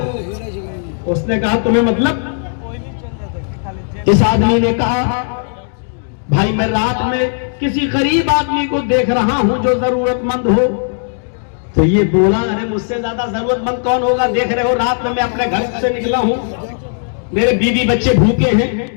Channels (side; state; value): right; silent; digital silence